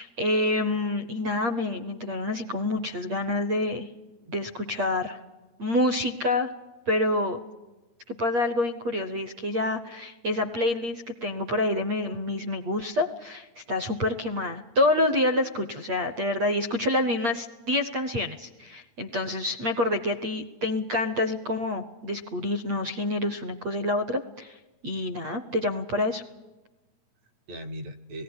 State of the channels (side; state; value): left; late; 8.6 ms